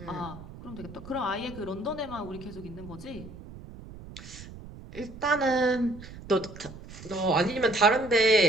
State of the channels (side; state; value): right; noise; rumble, 15 dB below the sound